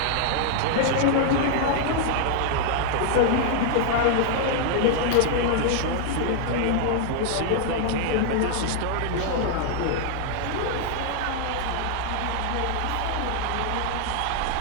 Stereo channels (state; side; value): different; both; correlation -0.01